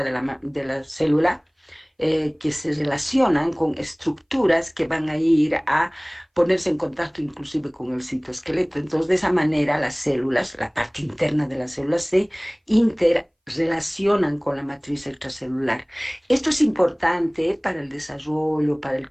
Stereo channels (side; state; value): both; identical; correlation 1.00